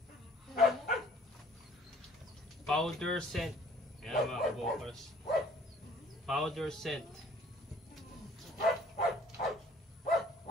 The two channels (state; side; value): normal; both; correlation 0.56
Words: Powder scent. Yan mga kabokers. Powder scent.